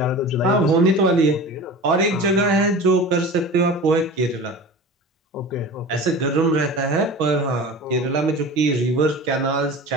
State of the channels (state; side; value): normal; both; correlation 0.35